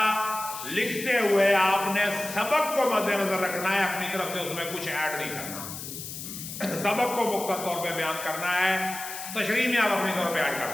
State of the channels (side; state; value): left; noise; hiss, 9 dB below the sound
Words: लिखते हुए आपने सबक को मद्देनजर रखना है, अपनी तरफ से उसमें कुछ ऐड नहीं करना। सबक को मुख्तर तौर पे बयान करना है, तशरीह में आप अपनी तौर पे ऐड कर